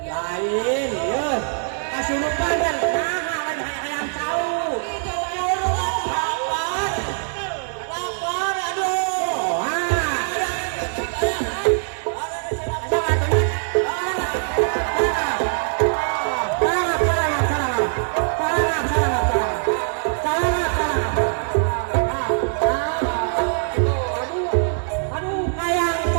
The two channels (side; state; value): left; silent; 57 dB below the other